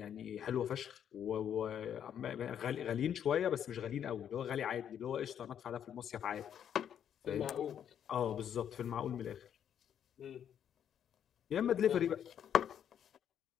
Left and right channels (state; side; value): quieter; right; 9.2 dB